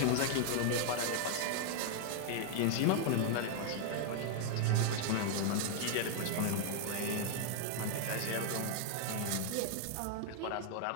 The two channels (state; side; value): different; both; correlation 0.00